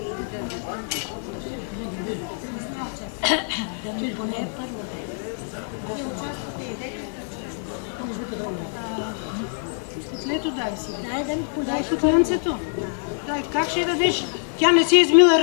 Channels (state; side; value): silent; right; 62 dB below the other